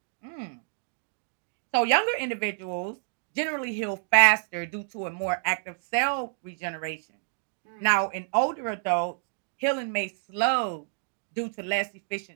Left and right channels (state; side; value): silent; left; digital silence